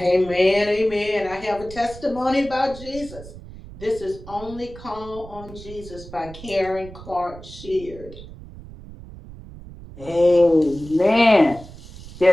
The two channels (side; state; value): right; noise; rumble, 16 dB below the sound